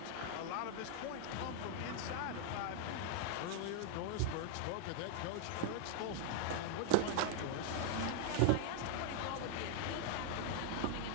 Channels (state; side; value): different; both; correlation 0.00